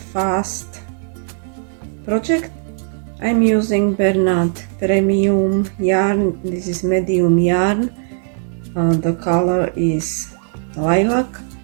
fast project. I'm using Bernard premium yarn. This is medium yarn. The color is lilac,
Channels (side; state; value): left; silent; digital silence